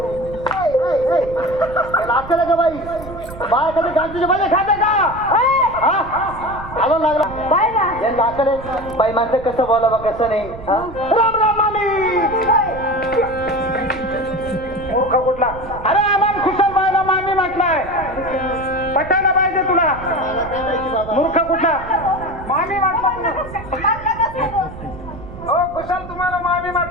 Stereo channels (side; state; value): right; noise; rumble, 14 dB below the sound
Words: लागतं का बाई? बाय कधी गांधीचे भाजी खाते का? आला लागला काय ना यांना अक्कल आहे? बाई माणसं कसं बोलावं कसं नाही. हा? राम राम मामी. मूर्ख कुठला? अरे आम्हाला खुशाल बाईला मामी म्हटलाय. पटायला पाहिजे तुला. मला काय माहिती बाबा? मूर्ख कुठला? मामी म्हटला तुला. हो खुशाल तुम्हाला मामी